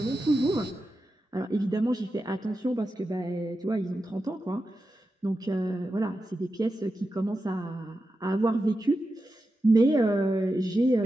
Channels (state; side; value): normal; both; correlation 0.90